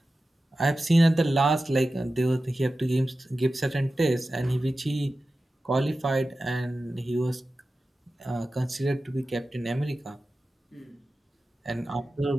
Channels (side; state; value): both; normal; correlation 0.94